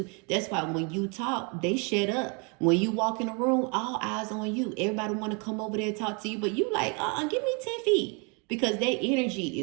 That's why when you talk, they shut up. When you walk in the room, all eyes on you. Everybody want to come over there and talk to you. But you like, give me 10 feet. Because their energy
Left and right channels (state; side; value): quieter; left; 33.8 dB